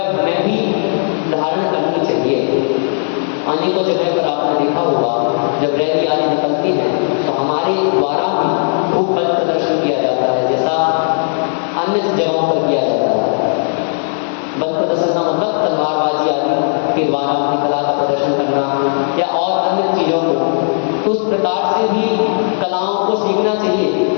हमें भी धारण करनी चाहिए। अनेकों जगह पर आपने देखा होगा जब रैली आदि निकलती हैं तो हमारे द्वारा भी खूब बल प्रदर्शन किया जाता है, जैसा अन्य जगहों पर किया जाता है। बल प्रदर्शन का मतलब तलवारबाजी आदि के द्वारा अपनी कला का प्रदर्शन करना या और अन्य चीज़ों को, तो उस प्रकार से भी कलाओं को सीखना चाहिए।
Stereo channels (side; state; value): right; silent; digital silence